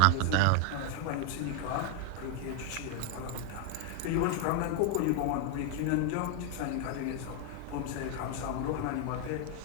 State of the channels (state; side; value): different; both; correlation 0.00